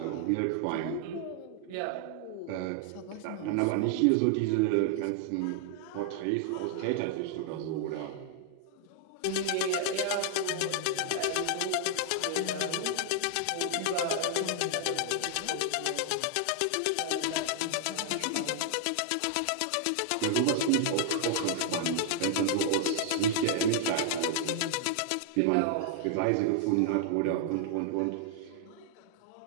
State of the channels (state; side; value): different; both; correlation 0.00